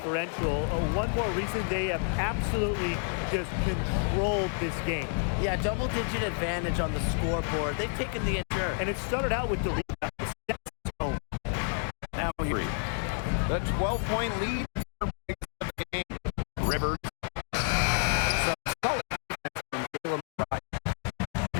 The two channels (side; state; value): right; silent; 58 dB below the other